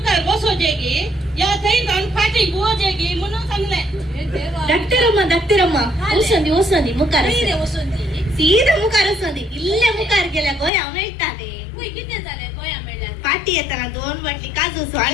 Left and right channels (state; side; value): drops out; right; at 10.7 s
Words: बसो जेगी या थई जाऊन फाटी गो जेगी म्हणून सांगले हे देवा धाकटे रम्मा ओसंदी मुकार नाही रे वसंती ಸೀದಾ ಮುಖಾರ ಸಂದಿ ಇಲ್ಲೇ ಮುಖಾರ ಗೆಲ್ಲ ಗೋಯ ಅವನ ಇಟ್ಟಾನೆ होय किती झाले गोया मेळ्या पाटी येताना 2 बाटली काजूसो